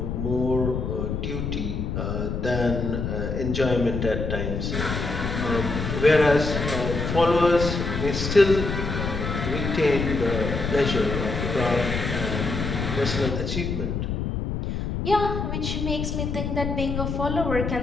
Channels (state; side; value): noise; left; rumble, 3 dB below the sound